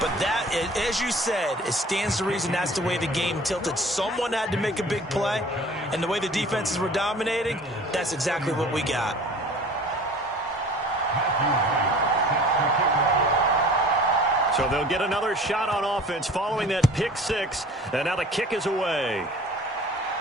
But that, as you said, it stands to reason that's the way the game tilted. Someone had to make a big play. And the way the defenses were dominating, that's exactly what we got. So they'll get another shot on offense following that pick six. And now the kick is away.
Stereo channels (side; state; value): both; normal; correlation 0.46